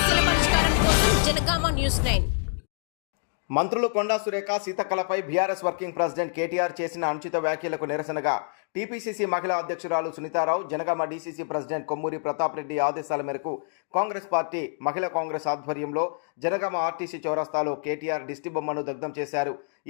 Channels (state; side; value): silent; right; digital silence